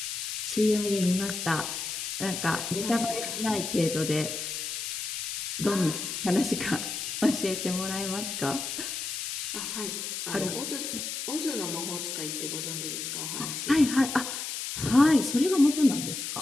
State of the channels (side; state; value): left; noise; hiss, 4 dB below the sound